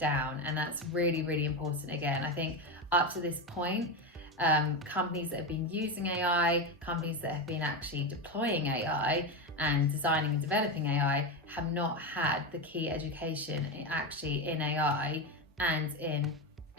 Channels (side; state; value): both; normal; correlation 0.15